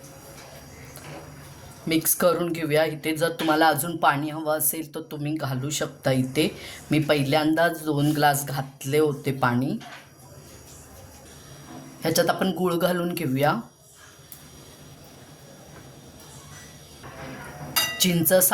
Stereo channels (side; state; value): both; identical; correlation 1.00